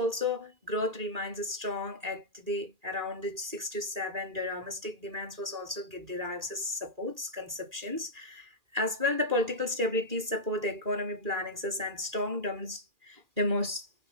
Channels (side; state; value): left; late; 1.8 ms